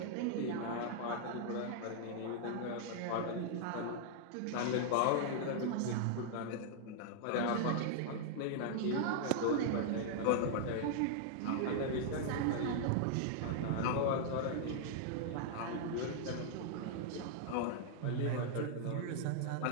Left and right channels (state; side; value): different; both; correlation -0.01